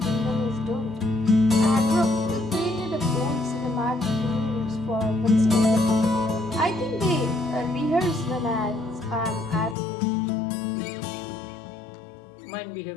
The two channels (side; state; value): right; drops out; at 9.8 s